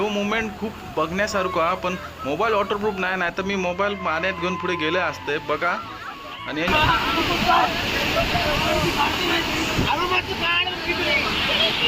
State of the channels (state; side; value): identical; both; correlation 1.00